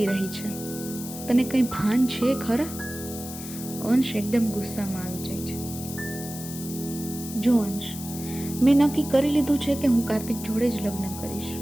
રહી છે? તને કંઈ ભાન છે ખરા? અંશ એકદમ ગુસ્સામાં આવી જાય છે. જો અંશ, મેં નક્કી કરી લીધું છે કે હું કાર્તિક જોડે જ લગ્ન કરીશ.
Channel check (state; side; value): noise; left; hiss, 11 dB below the sound